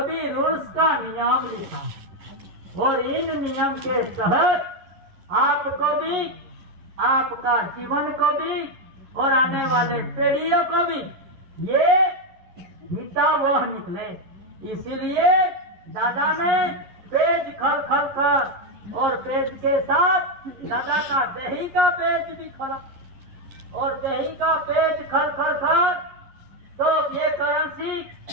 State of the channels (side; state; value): left; late; 11 ms